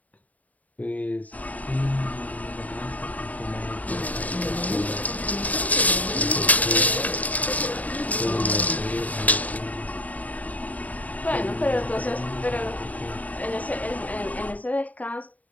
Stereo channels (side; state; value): right; late; 0.073 ms